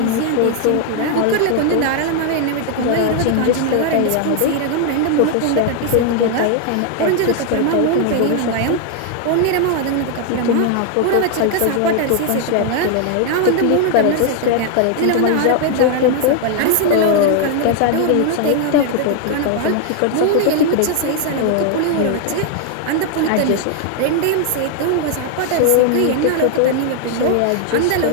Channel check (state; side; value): different; both; correlation 0.00